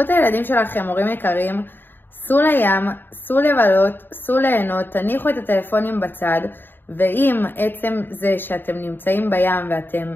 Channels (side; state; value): right; late; 0.095 ms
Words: את הילדים שלכם, הורים יקרים, סעו לים, סעו לבלות, סעו ליהנות, תניחו את הטלפונים בצד, ואם עצם זה שאתם נמצאים בים ואתם